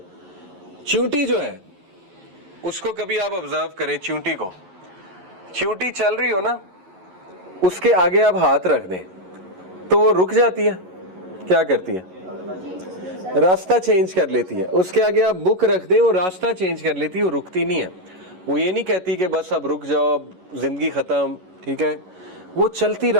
चींटी जो है उसको कभी आप ऑब्जर्व करें, चींटी को, चींटी चल रही हो ना, उसके आगे आप हाथ रख दें तो वो रुक जाती है। क्या करती है? रास्ता चेंज कर लेती है। उसके आगे आप बुक रख दें, वो रास्ता चेंज कर लेती है, वो रुकती नहीं है। वो ये नहीं कहती कि बस अब रुक जाओ, अब जिंदगी खत्म, ठीक है। वो चलती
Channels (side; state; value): left; late; 11 ms